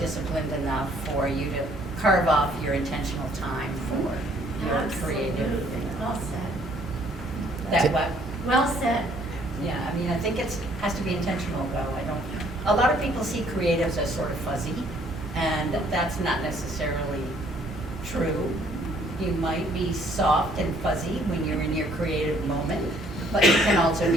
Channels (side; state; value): both; normal; correlation 0.62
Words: enough for you to carve off your intentional time for your creative. Well said. That what? Well said. Yeah, I mean, I think has to be intentional though. A lot of people see creatives as sort of fuzzy, and that's not necessarily true. You might be soft and fuzzy when you're in your creative moment, but you can also